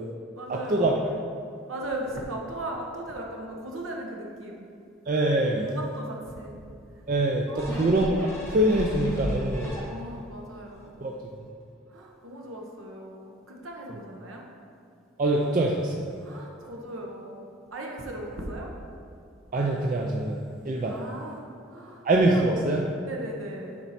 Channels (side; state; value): both; normal; correlation 0.44